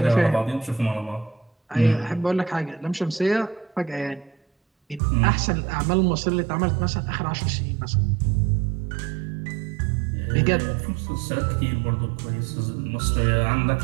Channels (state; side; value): drops out; left; at 5.0 s